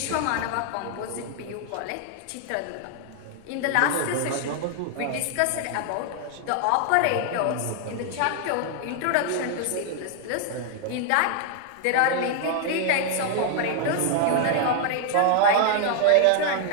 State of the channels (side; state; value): both; different; correlation 0.00